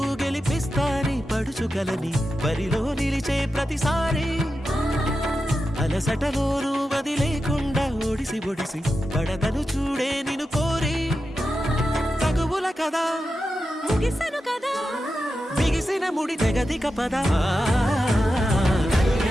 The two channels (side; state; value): both; normal; correlation 0.90